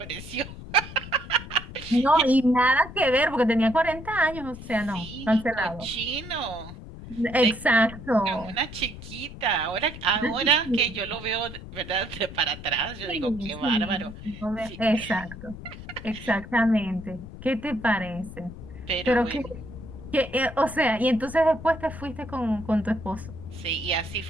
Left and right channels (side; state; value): left; noise; rumble, 13 dB below the sound